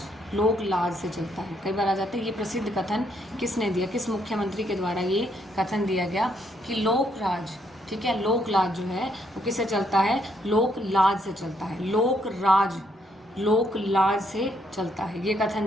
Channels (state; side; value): normal; both; correlation 0.73